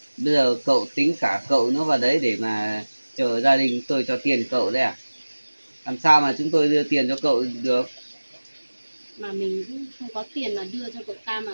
Bây giờ cậu tính cả cậu nữa vào đấy để mà chờ gia đình tôi cho tiền cậu đấy à? Làm sao mà chúng tôi đưa tiền cho cậu được? Mà mình cũng không có tiền mà đưa cho cậu ta, mà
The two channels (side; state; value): both; inverted; correlation -1.00